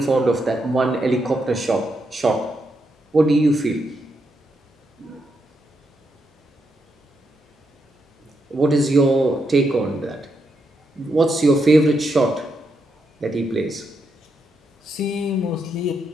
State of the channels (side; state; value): both; normal; correlation 0.81